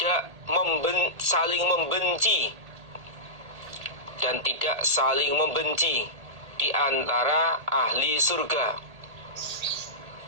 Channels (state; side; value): late; left; 1.8 ms